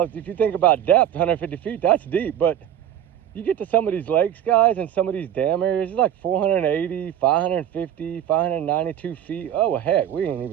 you think about depth, 150 feet, that's deep, but you get to some of these lakes, guys, and some of these dam areas, it's like 480, 550, 592 feet. Oh, well, heck, we ain't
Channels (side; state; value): left; quieter; 10.5 dB